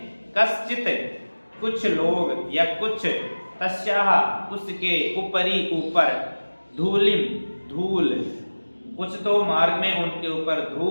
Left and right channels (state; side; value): inverted; both; correlation -1.00